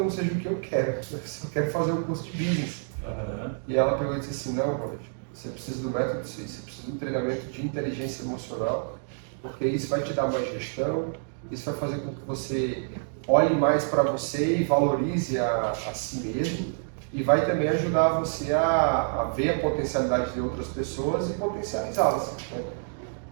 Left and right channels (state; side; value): silent; left; digital silence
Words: seja o que eu quero. Eu só quero fazer um curso de business. E ela pegou e disse assim: não, Ronald, você precisa do método CIS, você precisa de um treinamento de inteligência emocional, porque isso vai te dar mais gestão, isso vai fazer com que você olhe mais para você e valorize a si mesmo, e vai também ajudar você a ver a potencialidade de outras pessoas e potencializá-las. Né?